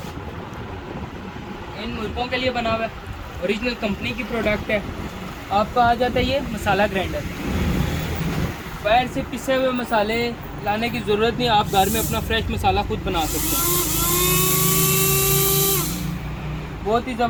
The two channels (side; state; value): both; identical; correlation 1.00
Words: इन मुल्कों के लिए बना हुआ है। ओरिजिनल कंपनी की प्रोडक्ट है। आपका आ जाता है ये मसाला ग्राइंडर। पैर से पिसे हुए मसाले लाने की ज़रूरत नहीं, आप घर में अपना फ्रेश मसाला खुद बना सकते हैं। बहुत ही